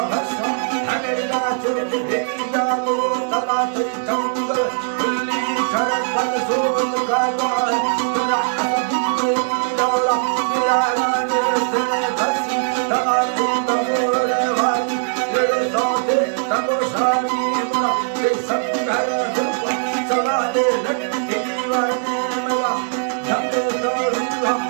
वर्षम हमेरा चोट भेजा गो तला तई चंगल खुली कर पग सोल का गाय तुरा असुदी दौड़ा मेरा राने से घसी तमाके तमोरे वाली ये सौदे तमोशानी मुना ये संघर दुर्गा चला दे लटकी दीवार में मगा झंडे तोड़ूंगा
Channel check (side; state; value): left; silent; 66 dB below the other